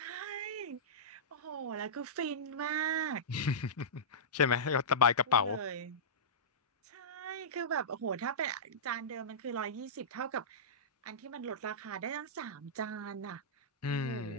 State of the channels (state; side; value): normal; both; correlation -0.16